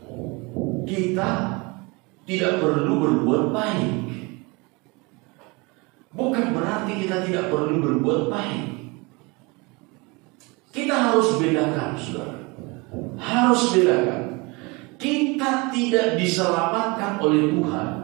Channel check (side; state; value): left; quieter; 26.9 dB